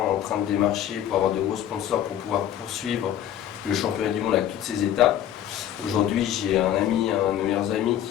en train de démarcher pour avoir de gros sponsors pour pouvoir poursuivre le championnat du monde avec toutes ses étapes. Aujourd'hui, j'ai un de mes meilleurs amis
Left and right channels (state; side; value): quieter; right; 10.9 dB